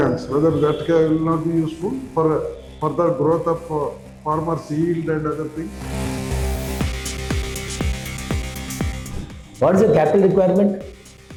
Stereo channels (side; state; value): both; identical; correlation 1.00